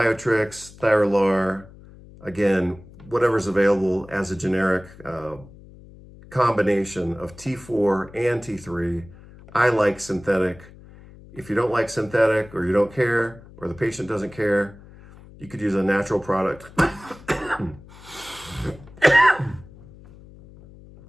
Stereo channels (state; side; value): noise; left; hum, 21 dB below the sound